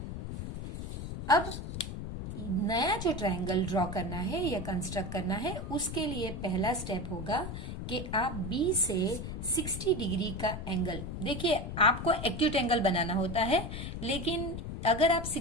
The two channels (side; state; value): left; noise; rumble, 6 dB below the sound